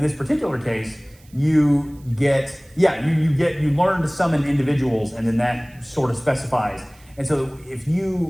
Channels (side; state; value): right; noise; hiss, 29 dB below the sound